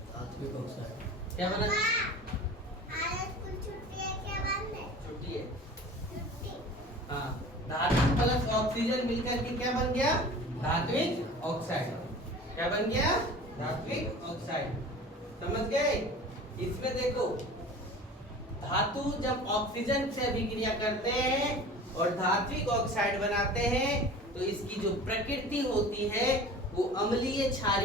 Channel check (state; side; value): normal; both; correlation 0.40